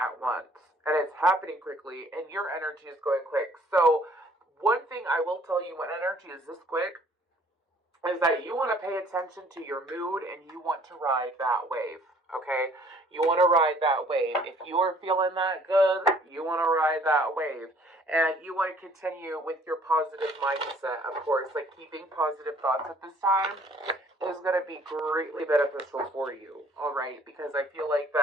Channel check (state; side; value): normal; both; correlation 0.58